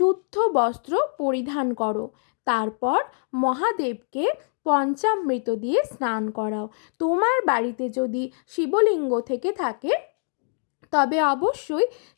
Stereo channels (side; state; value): right; silent; digital silence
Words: বস্ত্র পরিধান করো, তারপর মহাদেবকে পঞ্চামৃত দিয়ে স্নান করাও। তোমার বাড়িতে যদি শিবলিঙ্গ থেকে থাকে তবে অবশ্যই